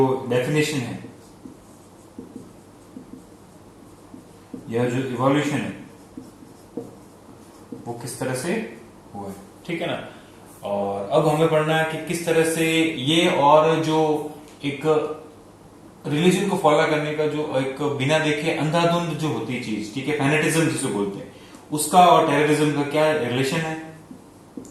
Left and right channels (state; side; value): identical; both; correlation 1.00